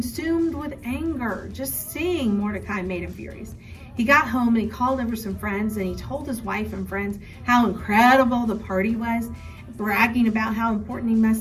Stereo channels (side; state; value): both; identical; correlation 1.00